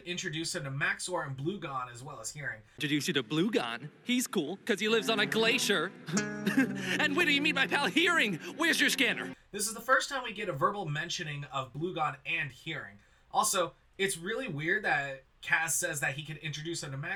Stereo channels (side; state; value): both; identical; correlation 1.00